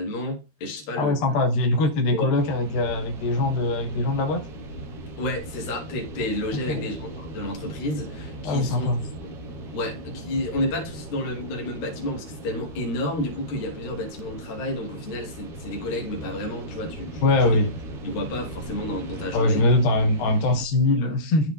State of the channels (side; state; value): right; late; 13 ms